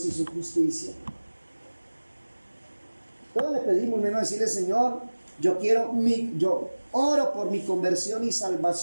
y su justicia. Todo le pedimos, menos decirle, Señor, yo oro por mi conversión y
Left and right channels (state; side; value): inverted; both; correlation -1.00